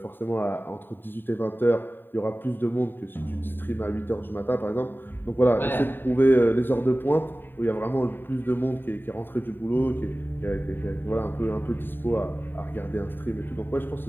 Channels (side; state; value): right; late; 0.095 ms